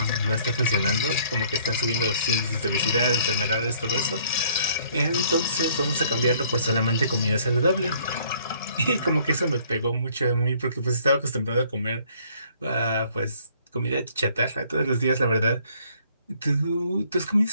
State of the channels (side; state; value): both; inverted; correlation -0.61